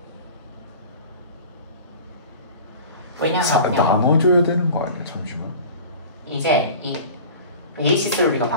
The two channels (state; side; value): inverted; both; correlation -0.39